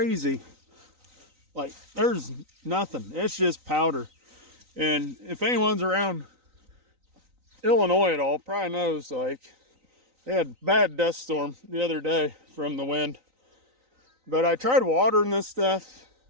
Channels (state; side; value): late; left; 3.9 ms